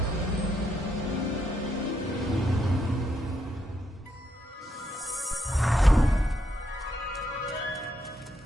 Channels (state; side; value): normal; both; correlation 0.78